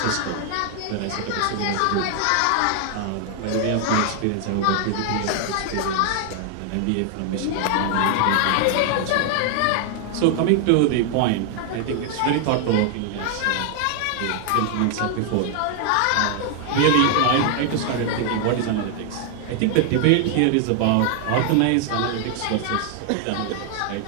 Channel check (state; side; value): different; both; correlation 0.00